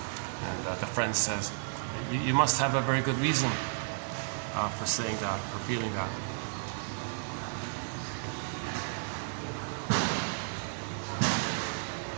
And the friend says, you must have a very good reason for saying that, for feeling that.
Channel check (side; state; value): left; silent; digital silence